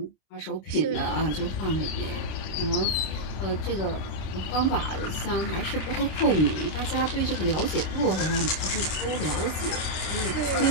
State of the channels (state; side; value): late; right; 26 ms